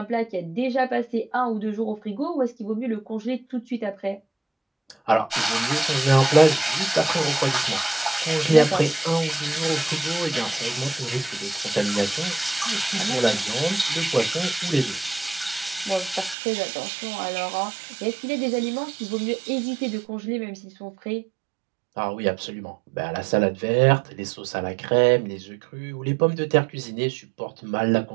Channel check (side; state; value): left; drops out; at 16.4 s